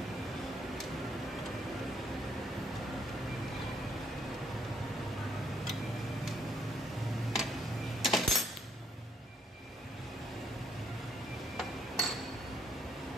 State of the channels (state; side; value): normal; both; correlation 0.70